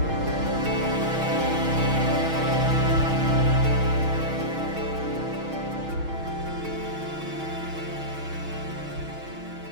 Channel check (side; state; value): left; late; 6.3 ms